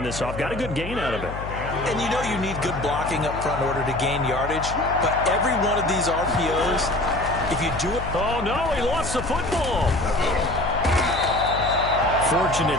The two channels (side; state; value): left; noise; hum, 9 dB below the sound